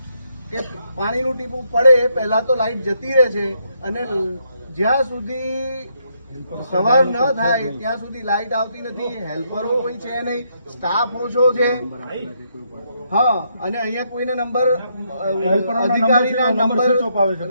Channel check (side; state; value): both; inverted; correlation -0.75